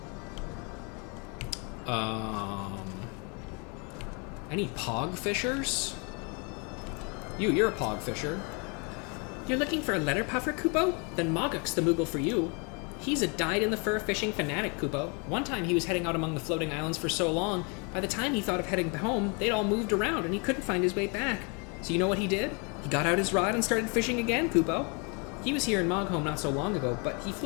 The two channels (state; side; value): quieter; right; 33.7 dB